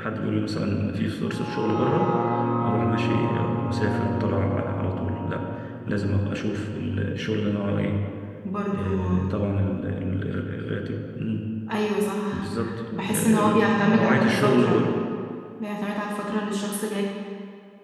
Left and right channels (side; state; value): both; identical; correlation 1.00